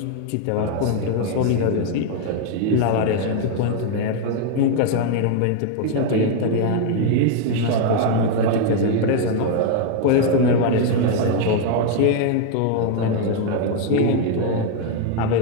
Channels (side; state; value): both; different; correlation 0.00